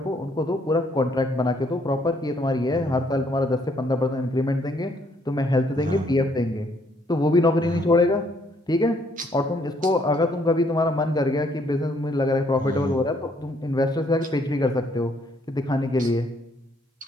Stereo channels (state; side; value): normal; both; correlation 0.68